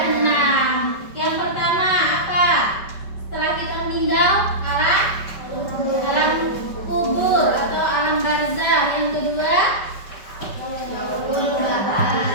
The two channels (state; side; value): late; right; 5.2 ms